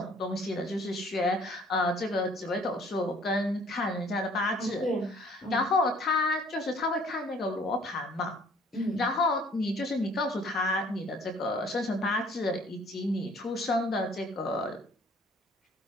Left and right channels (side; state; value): both; normal; correlation 0.56